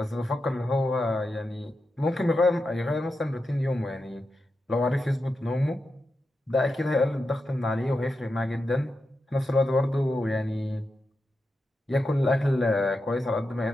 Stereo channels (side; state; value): both; normal; correlation 0.89